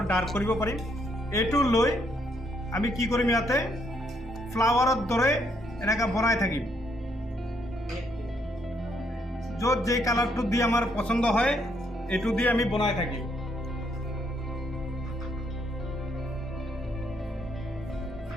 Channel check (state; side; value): normal; both; correlation 0.73